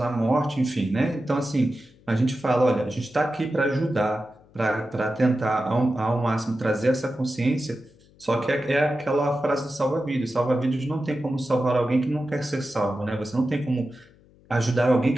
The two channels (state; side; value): noise; left; hum, 28 dB below the sound